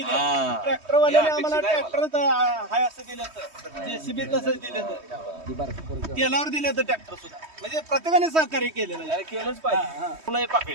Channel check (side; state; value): left; late; 3.2 ms